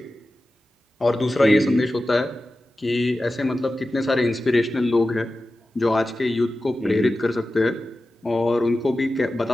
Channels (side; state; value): both; normal; correlation 0.94